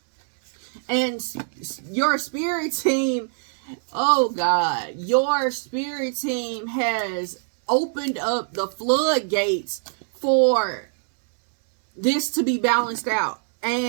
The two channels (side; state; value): left; silent; 62 dB below the other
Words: And your spirit team, oh God, your spirit team has opened up the floodgates for this to be balanced out.